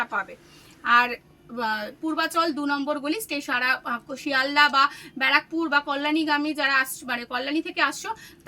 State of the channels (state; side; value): identical; both; correlation 1.00